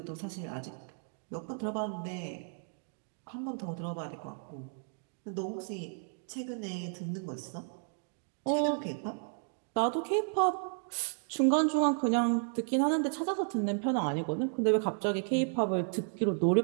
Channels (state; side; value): silent; left; 56 dB below the other